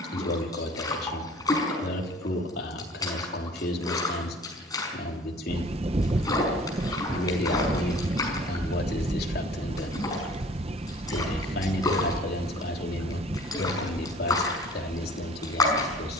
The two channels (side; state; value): both; normal; correlation 0.48